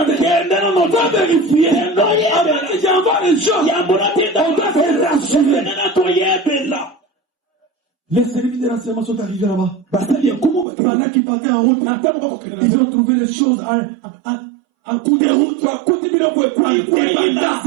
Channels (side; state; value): left; drops out; at 10.7 s